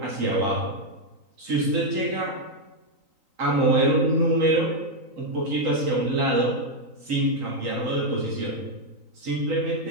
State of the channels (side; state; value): left; late; 3.9 ms